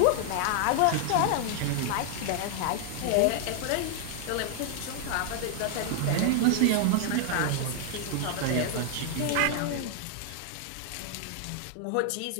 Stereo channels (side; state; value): both; different; correlation 0.00